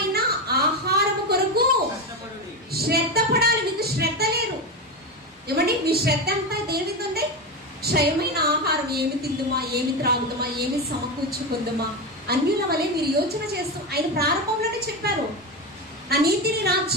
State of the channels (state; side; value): normal; both; correlation 0.16